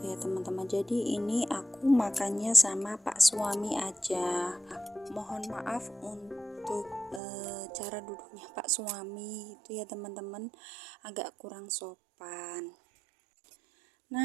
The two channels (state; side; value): drops out; left; at 7.2 s